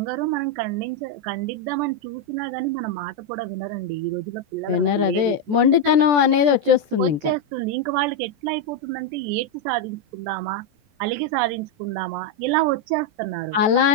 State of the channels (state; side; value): late; left; 14 ms